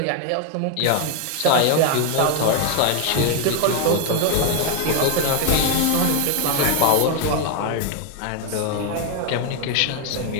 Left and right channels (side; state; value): both; different; correlation 0.00